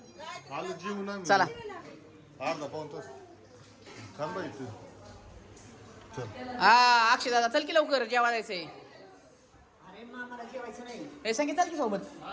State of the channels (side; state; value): both; identical; correlation 1.00